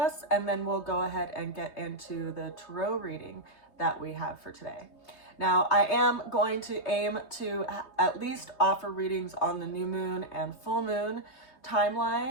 And then we'll go ahead and get into the tarot reading that we have for today. Now, I am going to aim to at least offer readings on the new moon and full moon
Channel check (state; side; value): late; right; 3.2 ms